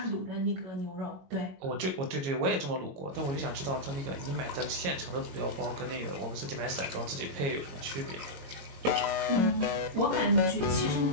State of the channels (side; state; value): left; late; 22 ms